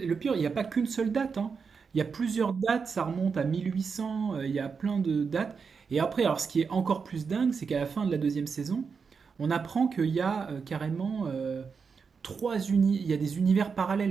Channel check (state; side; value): quieter; left; 5.6 dB